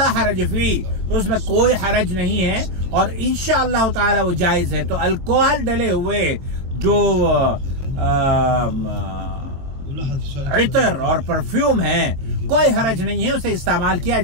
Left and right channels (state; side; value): late; left; 22 ms